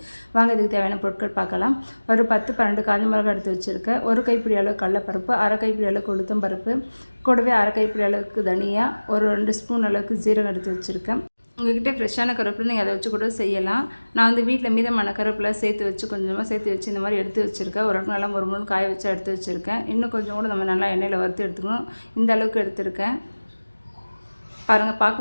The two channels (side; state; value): both; inverted; correlation -1.00